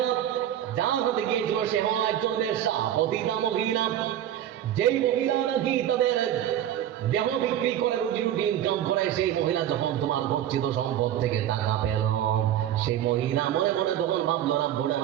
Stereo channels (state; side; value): quieter; left; 11.2 dB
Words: যার হাতে গিয়েছিল সে হলো একজন বেশ্যা, পতিতা মহিলা। যেই মহিলা নাকি তাদের দেহ বিক্রি করে রুজি রুটি ইনকাম করে, সেই মহিলা যখন তোমার গচ্ছিত সম্পদ থেকে টাকা পেল, সেই মহিলা মনে মনে তখন ভাবলো, রাব্বুল